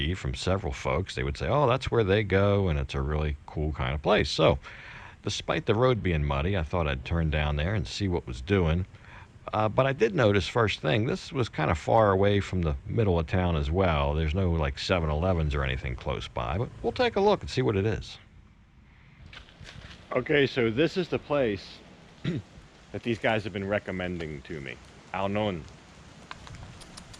from several folks. They would say, oh, that's where they go, and it's a really cool kind of place. So despite the road being muddy, I thought I'd turn down there and see what was doing. But I did notice, first thing, this was kind of far away from the middle of town as well. There's no like 7-Elevens or anything close by, but we'll take a look and see what it is. Okay, so this is the place that these guys have been recommending to me. AoNuan.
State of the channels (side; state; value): both; identical; correlation 1.00